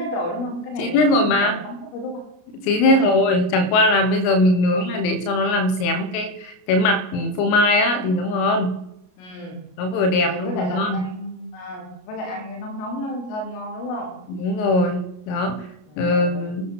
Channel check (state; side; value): late; right; 33 ms